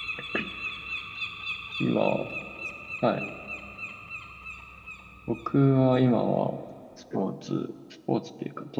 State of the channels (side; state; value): both; identical; correlation 1.00